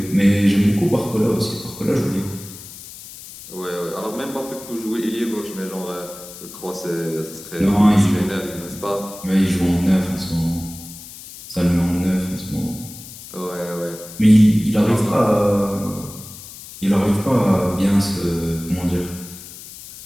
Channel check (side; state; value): left; noise; hiss, 15 dB below the sound